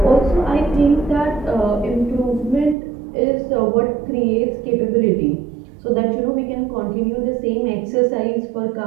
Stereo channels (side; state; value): left; drops out; at 2.8 s